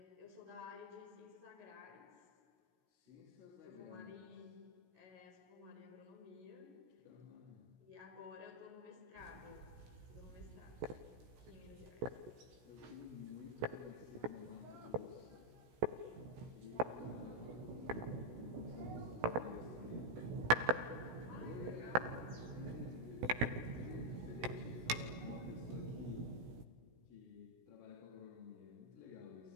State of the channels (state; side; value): late; left; 16 ms